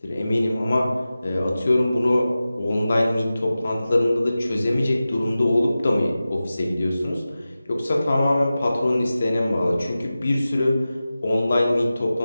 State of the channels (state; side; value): inverted; both; correlation -0.95